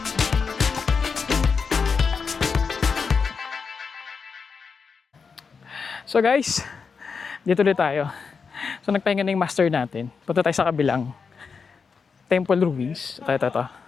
So guys, dito ulit tayo. So nagpahinga na yung master natin. Punta tayo sa kabilang temple ruins. Ito.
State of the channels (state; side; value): quieter; right; 5.4 dB